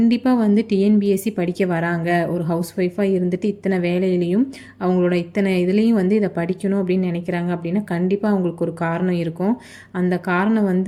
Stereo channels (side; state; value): both; identical; correlation 1.00